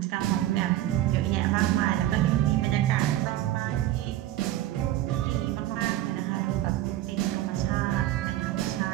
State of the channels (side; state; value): left; quieter; 14.1 dB